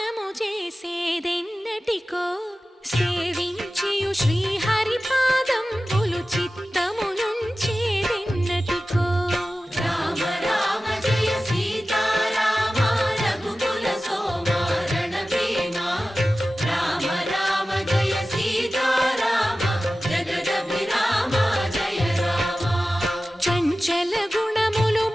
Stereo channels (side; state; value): both; normal; correlation 0.96